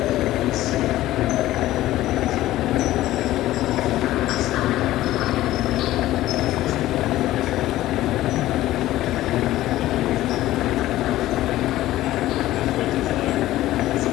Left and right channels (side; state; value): right; quieter; 15.3 dB